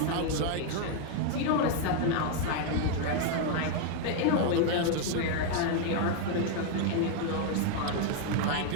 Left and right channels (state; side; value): different; both; correlation 0.00